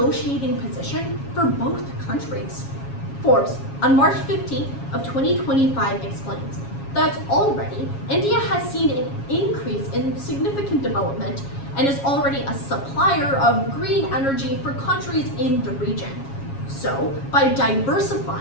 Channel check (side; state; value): right; late; 7.3 ms